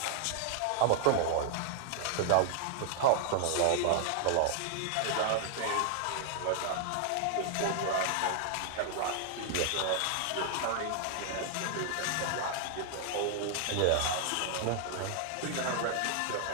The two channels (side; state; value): both; different; correlation -0.01